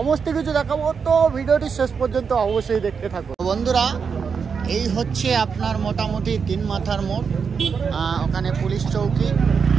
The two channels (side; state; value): left; quieter; 6.0 dB